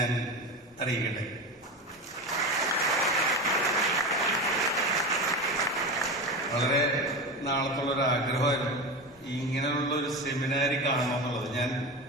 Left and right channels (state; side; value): normal; both; correlation 0.23